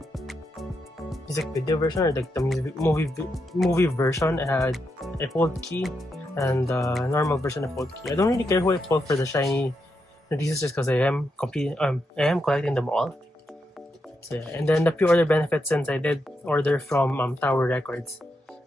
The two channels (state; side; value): normal; both; correlation 0.83